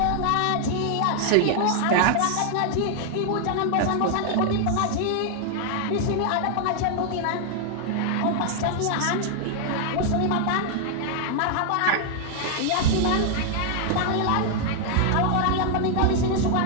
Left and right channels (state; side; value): different; both; correlation 0.00